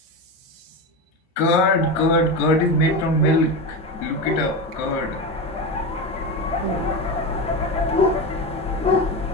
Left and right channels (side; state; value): both; normal; correlation 0.19